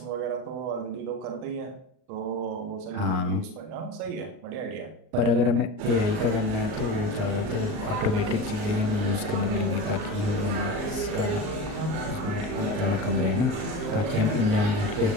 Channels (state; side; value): late; left; 38 ms